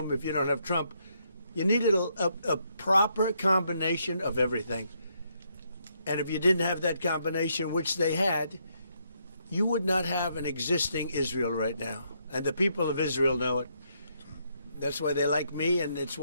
if you don't have Trump, you needed a proper combination of everything. And if you didn't have that combination, which they had, you would not have an existing Israel right now. And the people of Israel know it. That's why they like me, and it's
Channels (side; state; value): both; inverted; correlation -0.75